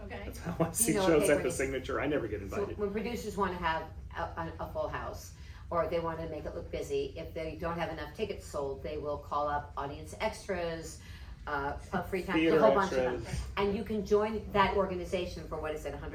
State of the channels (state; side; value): identical; both; correlation 1.00